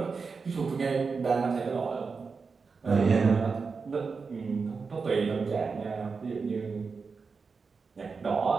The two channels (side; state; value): left; quieter; 4.9 dB